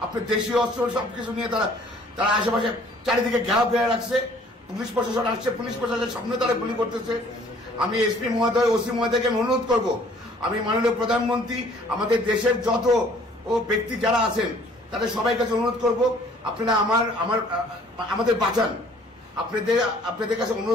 আপনার দেশীয় অস্ত্র সবকিছু নিয়ে তারা আশেপাশে চারিদিকে ঘেরাও ফেলে রাখছে। পুলিশ প্রশাসন আসছে, পুলিশ প্রশাসনের সামনে তারা গুলি করতেছে। আমি এসপি মহোদয়, ওসি মহোদয়কে অনুরোধ করব, আমি মাননীয় প্রধানমন্ত্রী, আমাদের দেশের যত ব্যক্তি যারা আছেন তাদের সবাই কাছে অনুরোধ করব, আপনারা আমাদের বাঁচান। আপনাদের কাছে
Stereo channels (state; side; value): normal; both; correlation 0.56